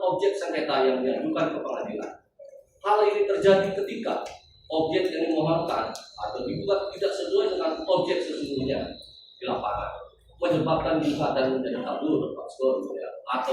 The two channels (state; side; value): identical; both; correlation 1.00